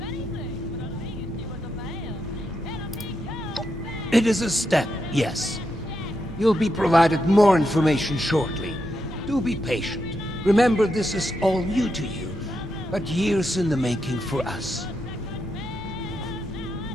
It is a step, yes. You'll be provided more information shortly. Do be patient. Remember, this is all new to you, but years in the making for us.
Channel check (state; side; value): normal; both; correlation 0.83